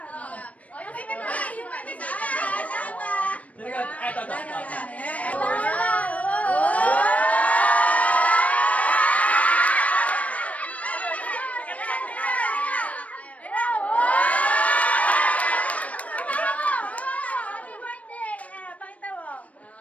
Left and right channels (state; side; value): late; right; 0.067 ms